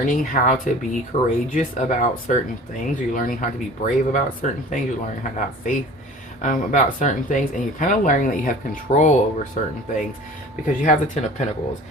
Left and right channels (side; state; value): both; normal; correlation 0.44